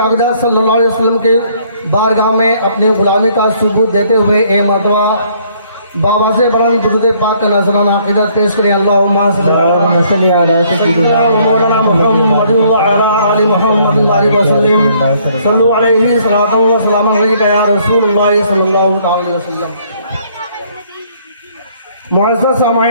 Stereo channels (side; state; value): both; inverted; correlation -0.63